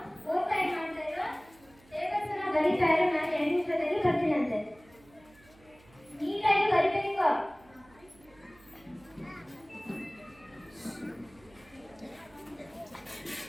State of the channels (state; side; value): noise; right; hum, 27 dB below the sound